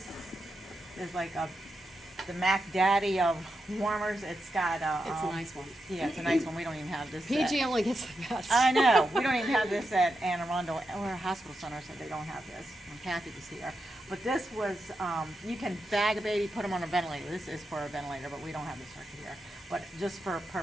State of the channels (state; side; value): normal; both; correlation 0.87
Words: is like the Mac Daddy of warmers, it's got It's a nice one. Yeah, it's a nice one. We don't even have this. PG only gets the best. I know. We don't even have this at Anne Arundel or Hospital Center, so they don't have this. When Kathy was here. But this was, you can bag a baby, put them on a ventilator. This is for a ventilator, but we don't have this circuit here. But just for